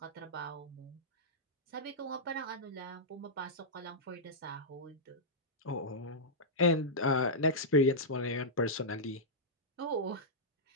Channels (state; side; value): normal; both; correlation -0.10